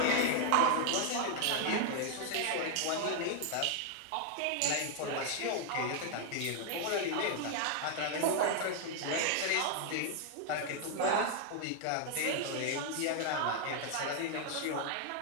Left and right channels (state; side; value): different; both; correlation 0.00